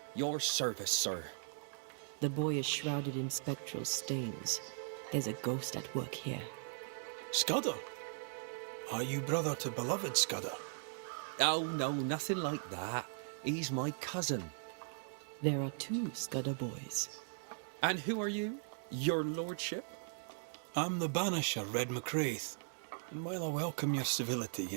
your service, sir. The boy is shrouded in spectral stains. There's a ghost at work here. Scudder? Are you brother to beloved Scudder? Oh, no, nothing like that. He's my cousin. There are two Scudder boys. And who are you? Your lordship? I'm the Banisher, Red McCraith. And while I welcome your civility,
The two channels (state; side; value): silent; left; digital silence